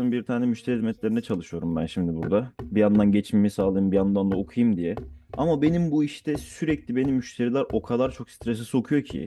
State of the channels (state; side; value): identical; both; correlation 1.00